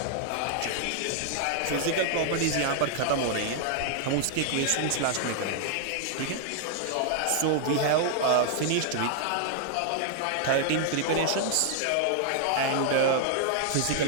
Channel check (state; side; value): different; both; correlation 0.00